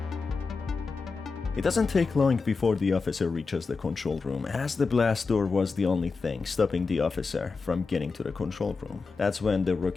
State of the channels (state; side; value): quieter; right; 4.5 dB